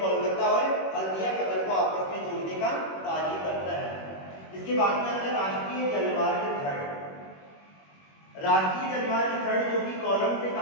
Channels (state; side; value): late; right; 21 ms